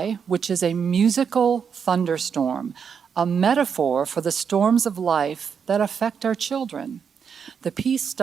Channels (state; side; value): quieter; left; 6.8 dB